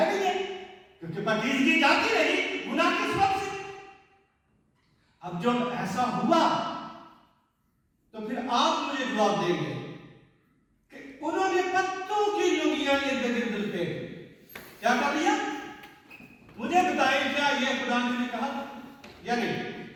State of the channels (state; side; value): identical; both; correlation 1.00